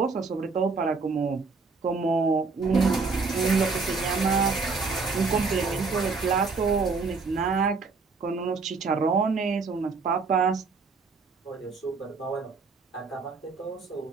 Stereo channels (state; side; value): quieter; left; 4.5 dB